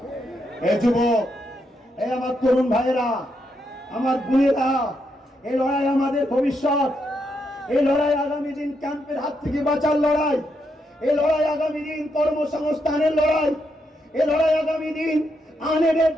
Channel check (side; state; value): both; normal; correlation 0.80